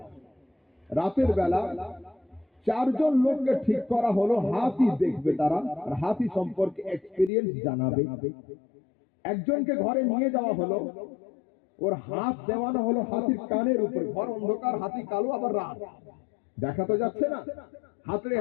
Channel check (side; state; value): right; drops out; at 7.3 s